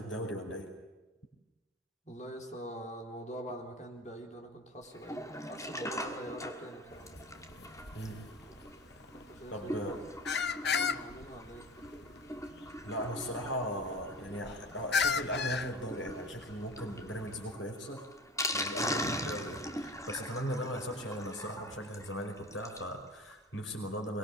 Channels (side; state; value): both; normal; correlation 0.36